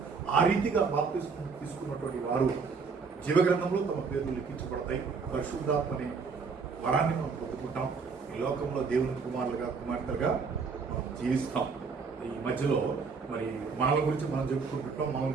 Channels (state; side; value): quieter; left; 5.1 dB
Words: ఆ రీతిగా బాప్తిస్మం తీసుకున్నటువంటి వారు జీవగ్రంథంలో తమ పేర్లు లిఖించబడతాయి. పరిశుద్ధాత్మని వరాన్ని మనం పొందుకుంటాం. ఈ లోకంలో దేవుని కుమారులుగా కుమార్తెలుగా మనం జీవిస్తాం. ఈ మధ్యలో మరి మనల గురించి మనం చెప్పుకుంటుంటాం, మన